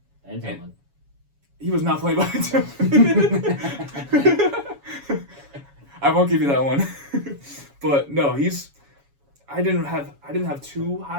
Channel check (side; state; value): left; late; 7.2 ms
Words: And Tillman. He was not playing behind Tillman. I won't give you that one. But no, I didn't have too